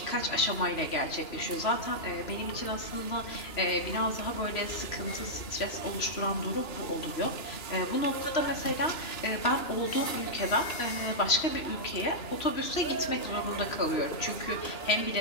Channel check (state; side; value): late; right; 2.9 ms